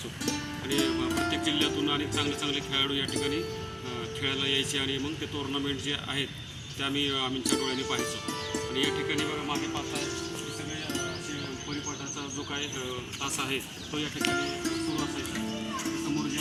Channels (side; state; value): both; identical; correlation 1.00